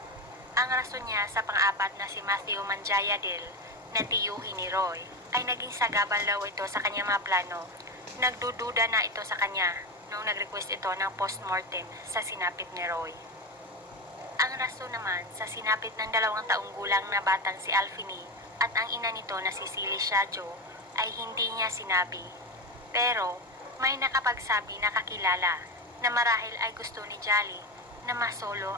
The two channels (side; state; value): both; normal; correlation 0.18